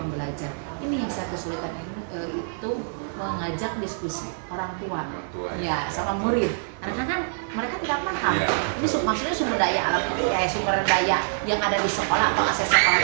Ini yang saya kesulitan itu mengajak diskusi orang tua, ya sama murid. Karena kan mereka tidak paham. Ini maksudnya sumber daya alam, sumber daya yang ada di sekolah atau aset sekolah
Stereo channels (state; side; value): silent; left; digital silence